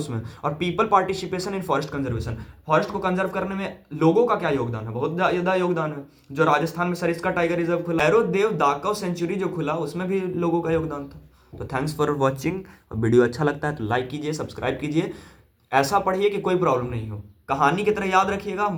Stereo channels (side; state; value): both; identical; correlation 1.00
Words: और people participation in forest conservation, forest को कंजर्व करने में लोगों का क्या योगदान है, बहुत ज्यादा योगदान है। जो राजस्थान में सरिस्का टाइगर रिजर्व खुला, भैरव दाकव सेंचुरी जो खुला, उसमें भी लोगों का योगदान था। तो थैंक्स फॉर वॉचिंग। वीडियो अच्छा लगता है तो लाइक कीजिए, सब्सक्राइब कीजिए, ऐसा पढ़िए कि कोई प्रॉब्लम नहीं हो। कहानी की तरह याद रखिएगा, हम